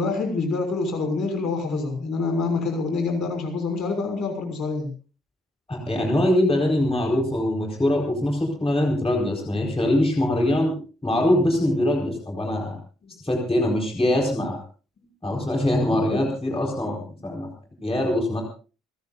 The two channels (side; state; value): both; normal; correlation 0.77